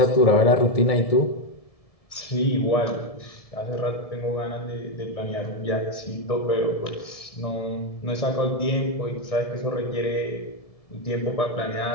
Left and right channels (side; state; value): right; late; 1.7 ms